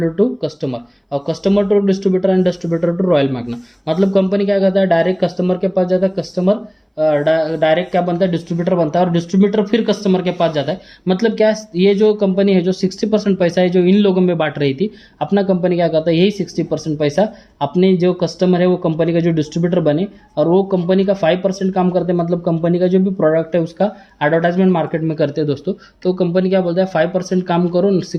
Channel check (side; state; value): both; identical; correlation 1.00